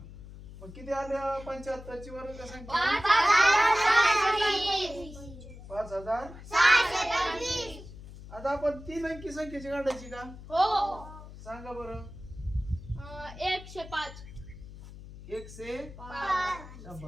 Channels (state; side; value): noise; left; hum, 15 dB below the sound